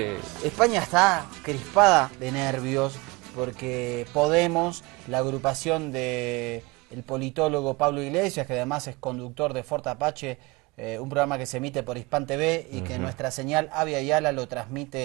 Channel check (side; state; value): left; quieter; 24.6 dB